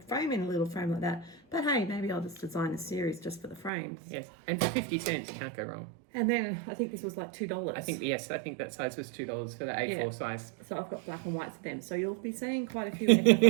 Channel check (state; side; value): drops out; left; at 3.7 s